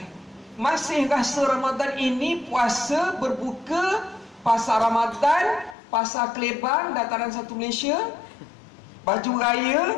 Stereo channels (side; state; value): right; drops out; at 5.8 s